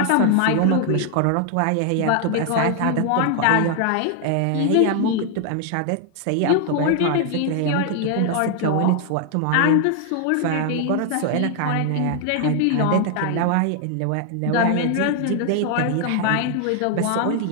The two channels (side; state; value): both; different; correlation 0.00